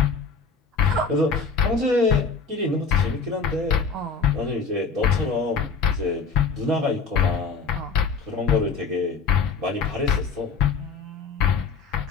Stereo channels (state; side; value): quieter; right; 5.0 dB